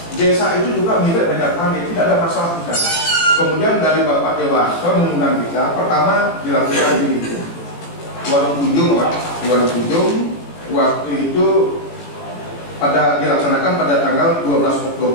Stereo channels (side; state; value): right; late; 17 ms